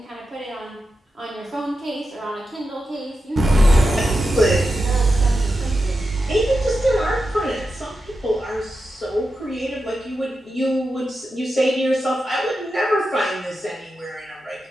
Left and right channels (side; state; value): both; normal; correlation 0.90